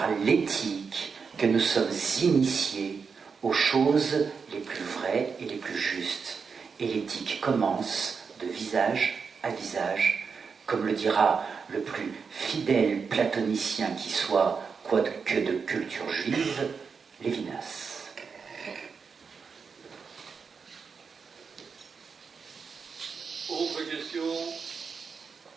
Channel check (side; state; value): left; quieter; 5.6 dB